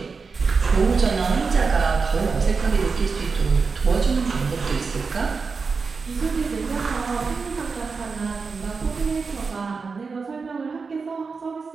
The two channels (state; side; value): quieter; left; 4.8 dB